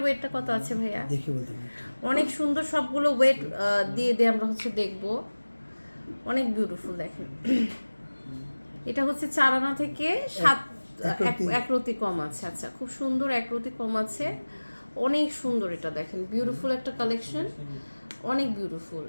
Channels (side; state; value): both; inverted; correlation -1.00